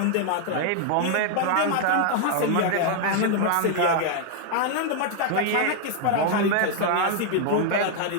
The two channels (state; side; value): different; both; correlation 0.00